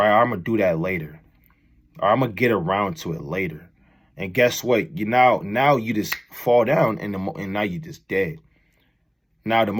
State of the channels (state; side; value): identical; both; correlation 1.00